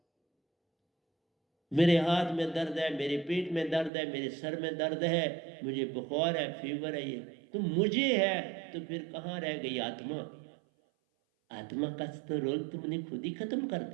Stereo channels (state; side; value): drops out; left; at 3.9 s